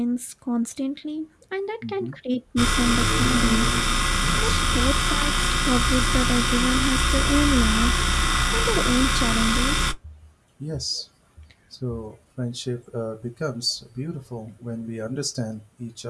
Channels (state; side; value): identical; both; correlation 1.00